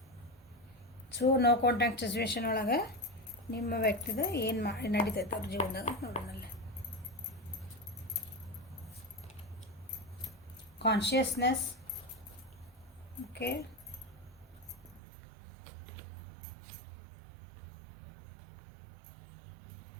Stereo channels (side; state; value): left; drops out; at 15.0 s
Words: ಸೊ ನೋ ಕಾಂಟ್ಯಾಕ್ಟ್ ಸಿಚುವೇಶನ್ ಒಳಗೆ ನಿಮ್ಮ ವ್ಯಕ್ತಿದ ಏನು ನಡೀತೈತೆ ಅವ್ರ ಜೀವನದಾಗ ನೋಡೋಣಲ್ಲ. ಕಾನ್ಷಿಯಸ್ನೆಸ್. Okay,